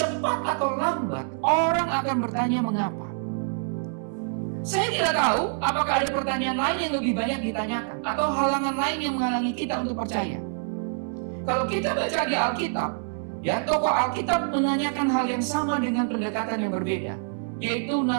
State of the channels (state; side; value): silent; left; 61 dB below the other